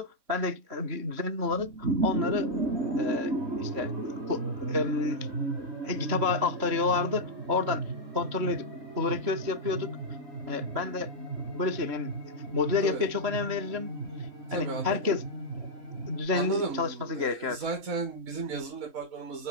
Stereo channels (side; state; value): left; late; 3.6 ms